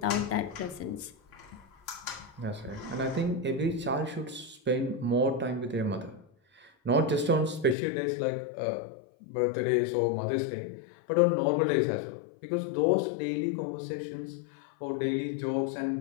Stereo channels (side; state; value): right; drops out; at 7.8 s